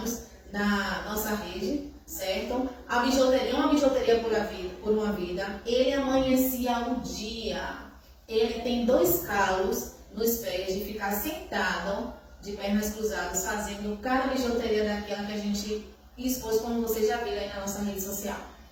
na nossa rede, certo? A bijuteria, uma bijuteria por uma vida. Ele amanhecia o dia. Ele tem 2 calos nos pés de ficar sentado, de pernas cruzadas, fazendo cada bijuteria daquela que a gente expôs, como vocês já viram aí na nossa rede social.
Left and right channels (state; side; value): identical; both; correlation 1.00